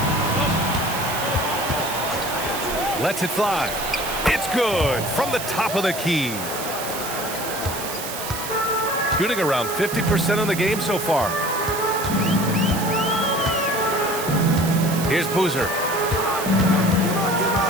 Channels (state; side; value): noise; right; hiss, 8 dB below the sound